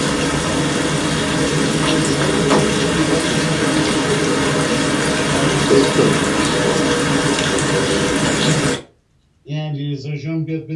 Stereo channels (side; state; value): both; identical; correlation 1.00